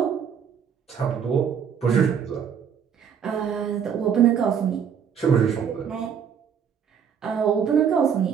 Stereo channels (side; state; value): left; quieter; 7.6 dB